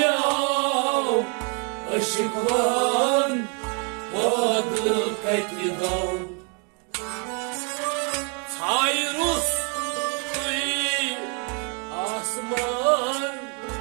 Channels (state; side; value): quieter; left; 36.8 dB